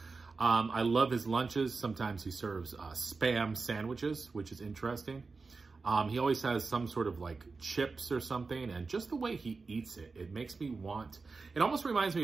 I love his lunches. Sometimes he serves Spam sandwiches, which is interesting. He always has some sort of like chips or something, and just the way he eats it, it makes me want, it almost reminds me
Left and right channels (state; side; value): quieter; left; 4.2 dB